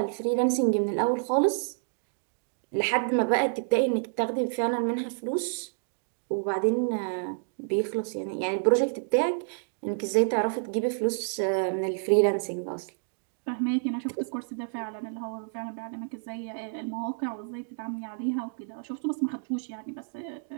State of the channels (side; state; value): left; silent; digital silence